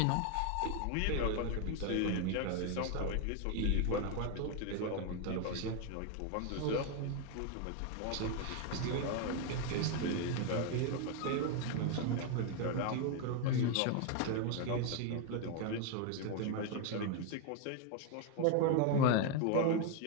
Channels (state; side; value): different; both; correlation 0.01